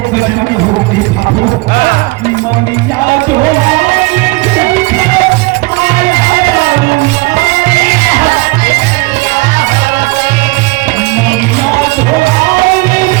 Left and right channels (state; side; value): quieter; left; 23.9 dB